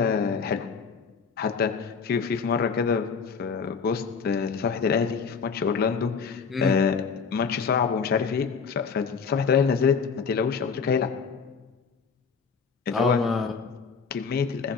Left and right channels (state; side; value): quieter; right; 5.6 dB